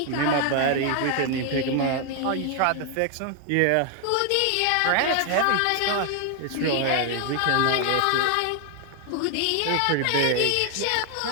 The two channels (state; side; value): different; both; correlation 0.00